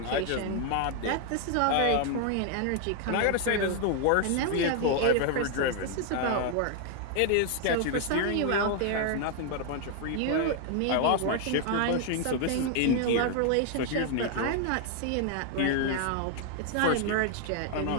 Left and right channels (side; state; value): both; different; correlation 0.00